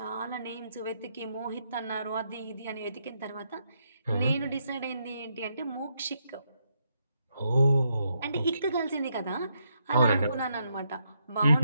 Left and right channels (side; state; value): both; inverted; correlation -0.79